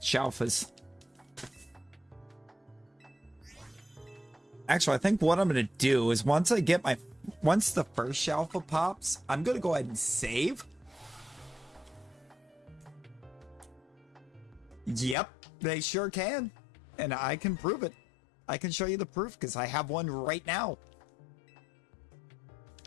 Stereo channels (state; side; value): drops out; right; at 15.2 s